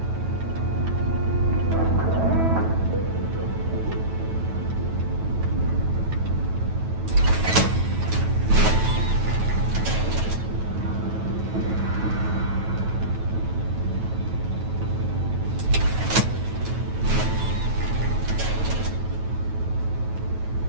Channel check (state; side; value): late; left; 9.2 ms